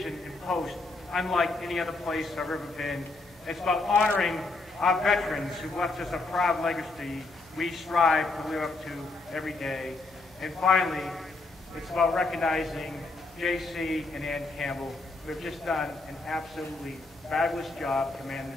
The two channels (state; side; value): quieter; right; 3.4 dB